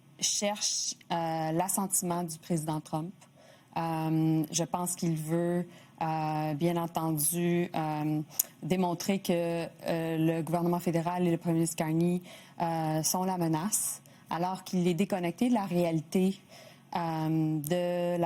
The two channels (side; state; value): both; identical; correlation 1.00